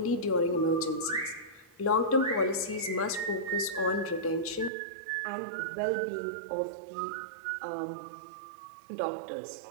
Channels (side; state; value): left; drops out; at 4.7 s